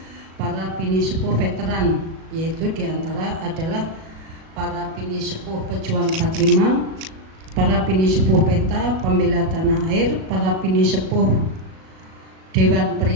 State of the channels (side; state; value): left; late; 37 ms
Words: para bini sepuh veteran, yaitu diantara adalah para bini sepuh pejuang 45, para bini sepuh PETA, pembela tanah air, para bini sepuh Dewan